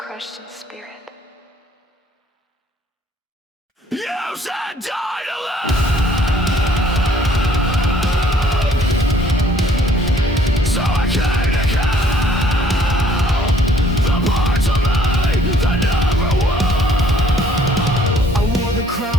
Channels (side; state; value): both; normal; correlation 0.60